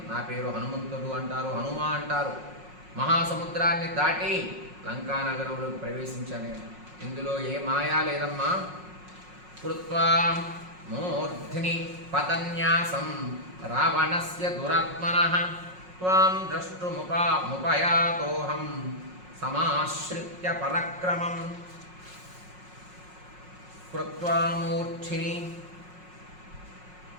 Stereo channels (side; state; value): left; late; 5.5 ms